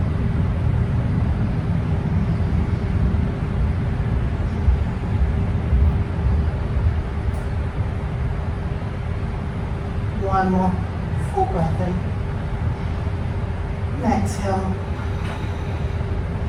One more full breath in. Exhale.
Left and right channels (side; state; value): both; identical; correlation 1.00